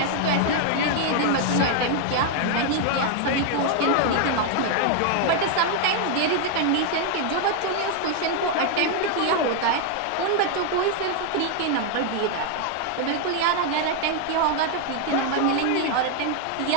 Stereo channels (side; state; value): both; different; correlation 0.00